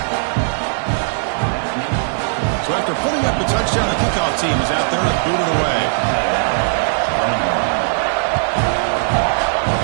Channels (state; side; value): silent; left; digital silence